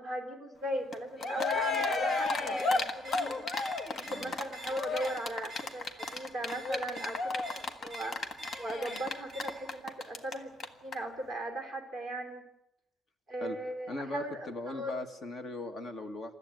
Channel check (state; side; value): normal; both; correlation 0.70